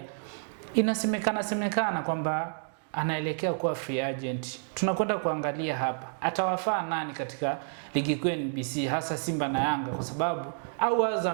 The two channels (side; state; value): left; silent; digital silence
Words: inasemekana kwamba anaelekea kuwa free agent. Tunakwenda kuangalia hapa atawafaa nani katika ligi kuu NBC, hasa Simba na Yanga, kwa sababu au